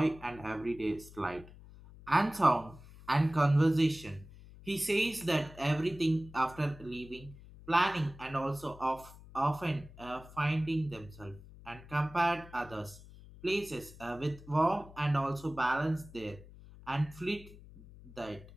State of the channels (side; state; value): left; noise; hum, 19 dB below the sound